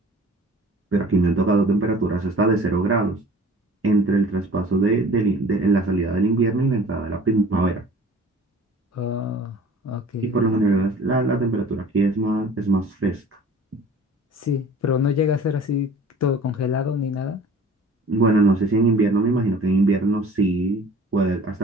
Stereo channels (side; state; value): both; normal; correlation 0.47